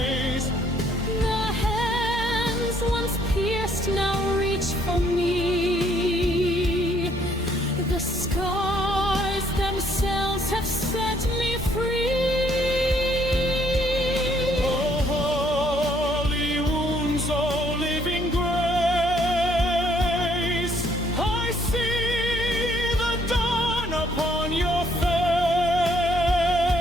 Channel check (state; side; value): normal; both; correlation 0.67